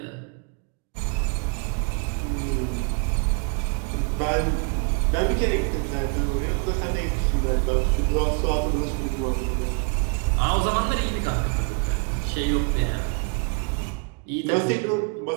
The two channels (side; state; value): left; quieter; 34.9 dB